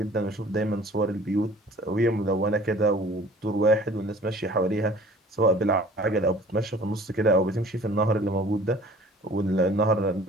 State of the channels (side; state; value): both; normal; correlation 0.49